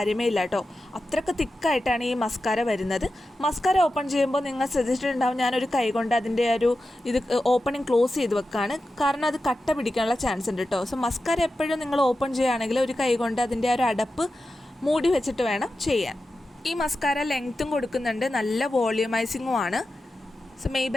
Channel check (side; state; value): both; normal; correlation 0.92